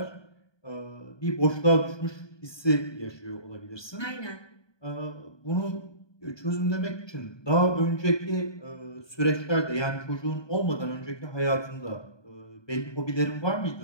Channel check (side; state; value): right; late; 1.2 ms